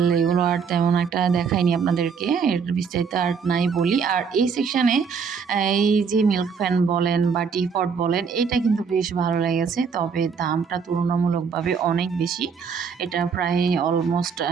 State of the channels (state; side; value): quieter; left; 6.0 dB